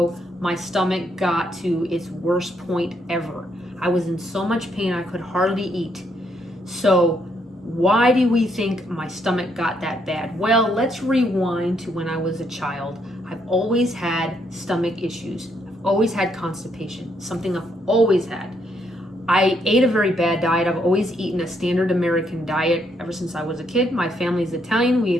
my stomach got to its worst point ever. I was in so much pain I could hardly eat. So why do we think my stomach got that bad? Well, let's rewind to when I was a child. I've always had stomach issues. I've always had constipation, something I've always had. I ate a very bad diet. I've always eaten a standard American diet ever since I was a kid. My family's Italian. We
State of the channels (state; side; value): normal; both; correlation 0.74